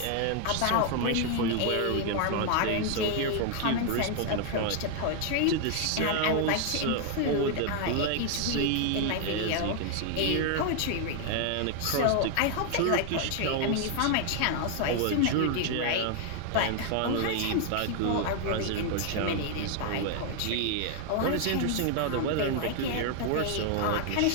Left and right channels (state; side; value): different; both; correlation 0.00